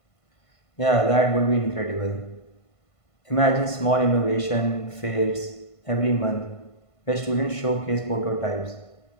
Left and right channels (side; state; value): right; late; 1.5 ms